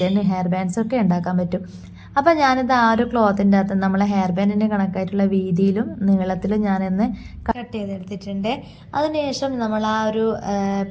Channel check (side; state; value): both; identical; correlation 1.00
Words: ഹെയർ ബാൻഡ്സ് ഒക്കെ ഉണ്ടാക്കാൻ പറ്റും. അപ്പോൾ ഞാനിത് ആ ഒരു ക്ലോത്തിൻ്റെ അകത്ത് നമ്മളെ ഹെയർ ബാൻഡിൻ്റെ കണക്കായിട്ടുള്ള വീതിയിലും നീളത്തിലും ഞാനിന്ന് കട്ട് ചെയ്തെടുത്തിട്ടുണ്ട്. അതിനുശേഷം നമ്മൾ ആ ഒരു